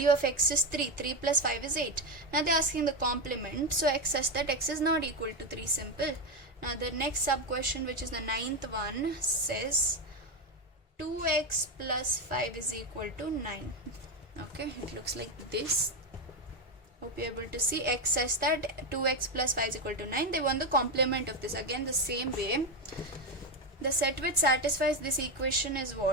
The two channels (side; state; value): both; normal; correlation 0.10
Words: of x is 3. 3 plus 5 is 8. Now they're asking the complement, so x such that x is not equal to 3. Simple. Now the next sub question, which is the ninth one, says 2x plus 5 is equal to 9. Okay, it looks like this. Hope you're able to see. X such that 2x plus 5 is equal to 9. They want the complement of this. Again the same way. The set which satisfies this equation is